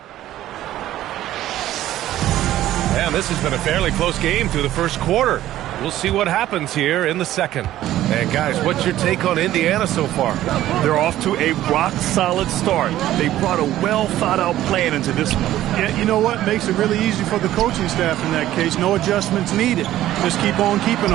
This has been a fairly close game through the first quarter. We'll see what happens here in the second. And guys, what's your take on Indiana so far? They're off to a rock-solid start. They brought a well-thought-out plan into this one. Yeah, you know what? Makes it really easy for the coaching staff in that case. No adjustments needed. Just keep on keeping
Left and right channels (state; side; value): quieter; left; 13.7 dB